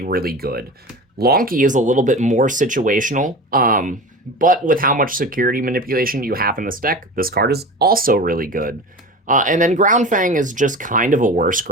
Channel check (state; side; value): normal; both; correlation 0.32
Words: really good. Lonky is a little bit more situational, but with how much security manipulation you have in this deck, this card is also really good. And then Ground Fang is just kind of a worse